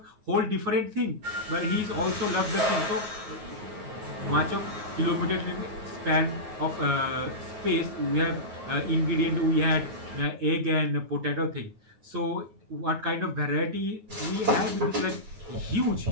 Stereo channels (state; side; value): late; left; 9.4 ms